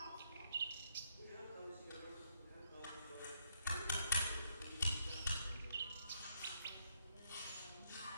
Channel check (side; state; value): both; inverted; correlation -0.74